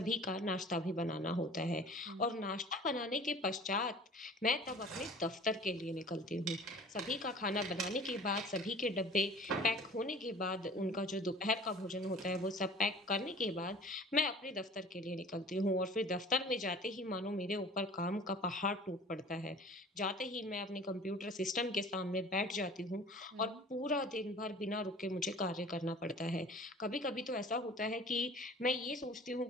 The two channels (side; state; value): both; normal; correlation 0.45